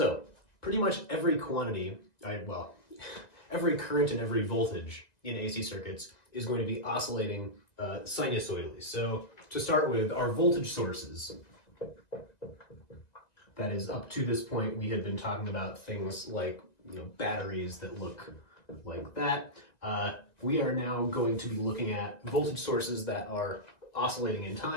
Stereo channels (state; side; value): late; right; 2.0 ms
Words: pretty much every quantity, every current and every voltage in AC circuits is going to be oscillating sinusoidally. So to start with, our voltage sources. That is, up to this point, we had been talking about things like batteries that look like that. We are now going to be looking at voltage sources that are oscillating in